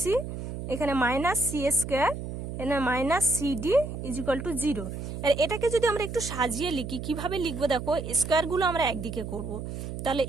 এখানে মাইনাস সি স্কোয়ার, এখানে মাইনাস সিডি ইজিক্যাল টু 0। আর এটাকে যদি আমরা একটু সাজিয়ে লিখি, কিভাবে লিখবো দেখো, স্কোয়ারগুলো আমরা একদিকে করব। তাহলে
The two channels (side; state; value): right; noise; hum, 7 dB below the sound